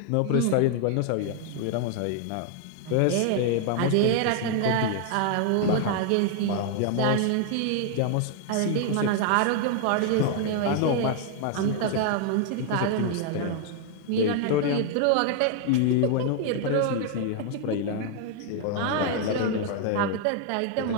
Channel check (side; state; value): both; different; correlation 0.00